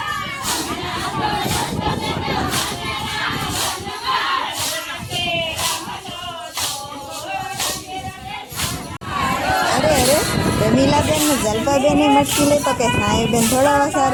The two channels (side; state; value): both; identical; correlation 1.00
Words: રમીલાબેન ને જલ્પાબેનની મટકી લે તો કે સાયુબેન થોડા